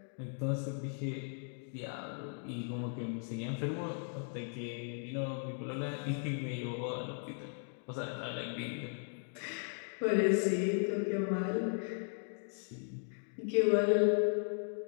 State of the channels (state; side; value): silent; right; 53 dB below the other